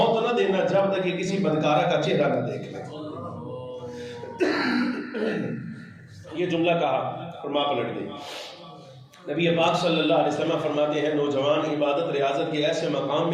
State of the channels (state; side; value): identical; both; correlation 1.00